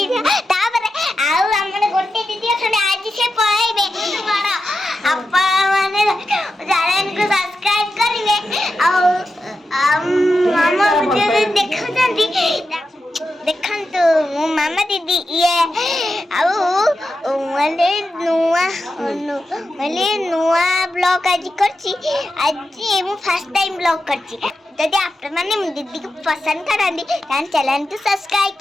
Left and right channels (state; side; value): normal; both; correlation 0.90